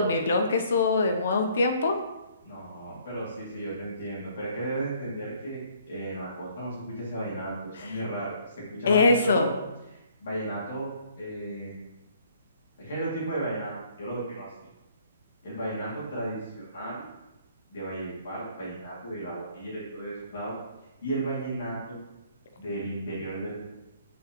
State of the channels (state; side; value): inverted; both; correlation -0.62